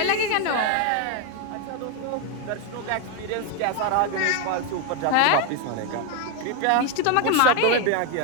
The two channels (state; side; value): different; both; correlation 0.01